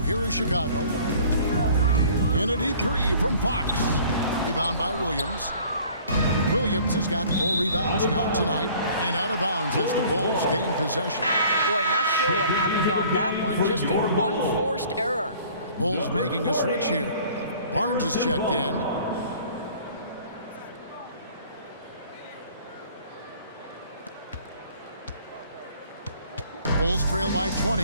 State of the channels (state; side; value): inverted; both; correlation -0.52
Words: here is Chicago. And a deep 3 from Fox. Rebound by Williams. Williams has got 4 rebounds now tonight. And out of bounds as the Bulls gain possession. Boy, not sure what happened on that one. Just an unforced error. Bulls making a switch here. Barnes is checked in. Bulls trail by